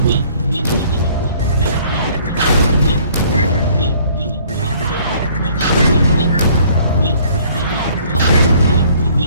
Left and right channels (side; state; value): both; inverted; correlation -0.57